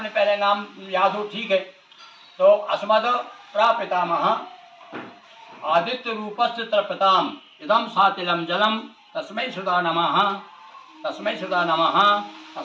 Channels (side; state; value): both; identical; correlation 1.00